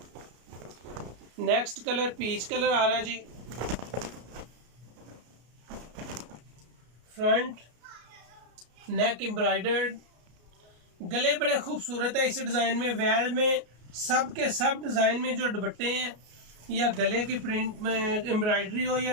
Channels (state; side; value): late; left; 33 ms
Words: नेक्स्ट कलर पीच कलर आ रहा है जी। फ्रंट, नेक एम्ब्रॉयडर्ड, गले बड़े खूबसूरत है इस डिज़ाइन में। वैल में सब के सब डिज़ाइन में जो दुपट्टे हैं या गले की प्रिंट में एम्ब्रॉयडरी हो या